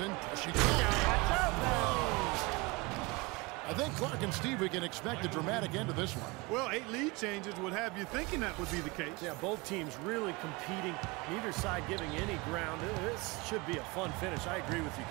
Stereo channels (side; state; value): left; quieter; 25.0 dB